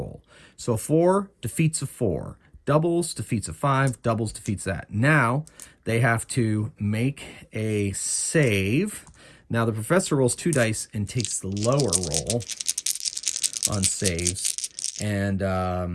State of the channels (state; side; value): identical; both; correlation 1.00